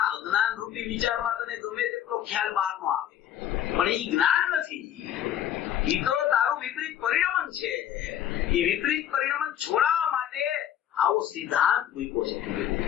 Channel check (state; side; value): quieter; right; 10.5 dB